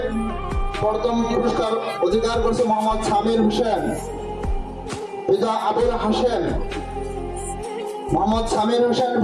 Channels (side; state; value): both; identical; correlation 1.00